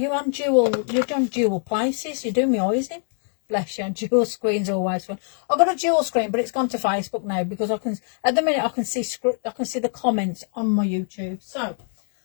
dual places. You do me eyes in. Bless you. Dual screen's always fun. I've got a dual screen, but it's gone to Facebook now, because I can, at the minute, I can see the comments on my YouTube. So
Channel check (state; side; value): silent; right; 59 dB below the other